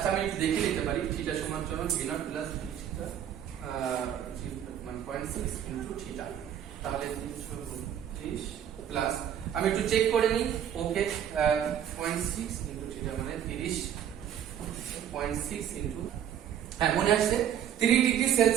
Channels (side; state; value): left; quieter; 9.9 dB